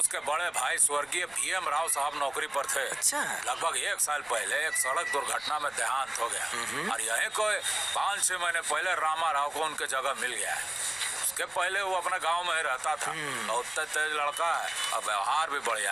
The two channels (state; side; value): noise; right; rumble, 28 dB below the sound